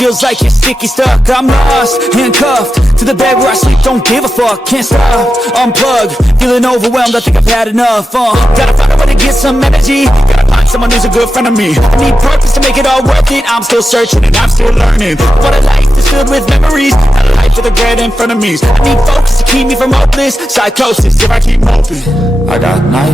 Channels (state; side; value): normal; both; correlation 0.91